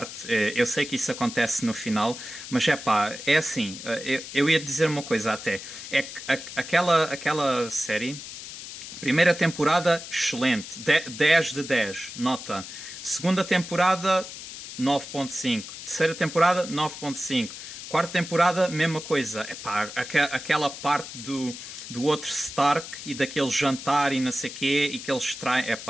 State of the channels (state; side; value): noise; left; hiss, 11 dB below the sound